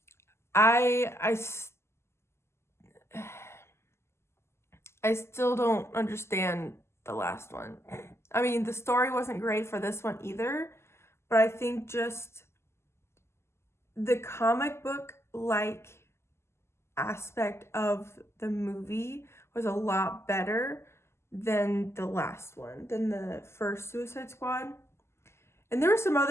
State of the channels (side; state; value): right; late; 0.13 ms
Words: I still don't understand the last one. I mean, the story wasn't great for this one either, but I think just the comic book-like aspect of the movie was a lot better than the last one, than the first Suicide Squad. And there were some